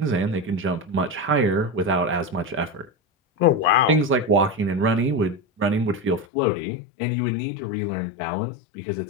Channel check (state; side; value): drops out; right; at 6.2 s